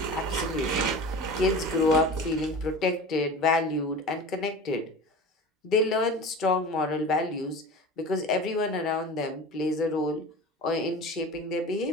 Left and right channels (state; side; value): normal; both; correlation 0.35